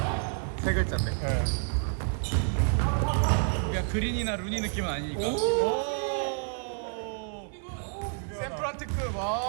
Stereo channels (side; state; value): left; silent; 58 dB below the other